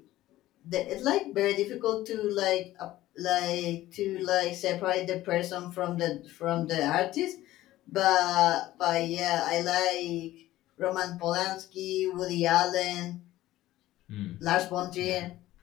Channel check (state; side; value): quieter; right; 15.5 dB